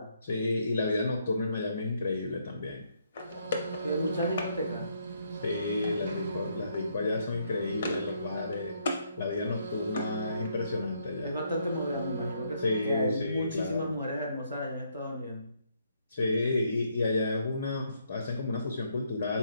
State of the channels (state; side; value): inverted; both; correlation -0.73